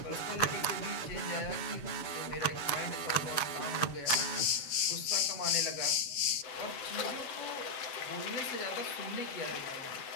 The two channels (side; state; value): right; late; 7.5 ms